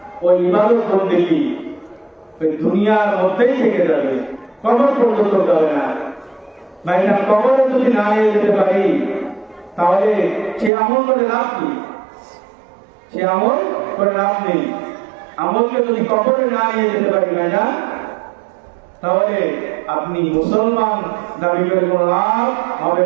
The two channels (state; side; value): drops out; left; at 10.7 s